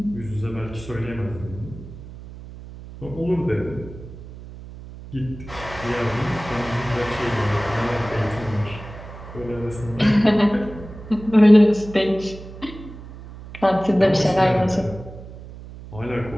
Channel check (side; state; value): right; noise; hum, 15 dB below the sound